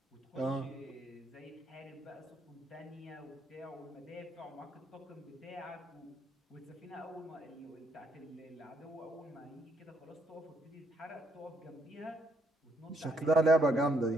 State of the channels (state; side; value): normal; both; correlation 0.72